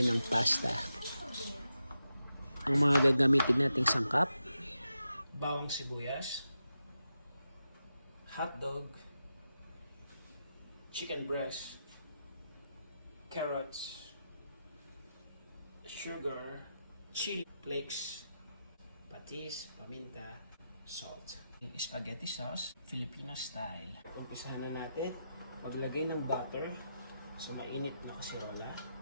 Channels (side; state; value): both; inverted; correlation -0.88